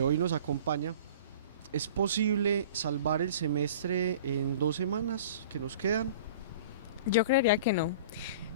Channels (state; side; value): inverted; both; correlation -0.43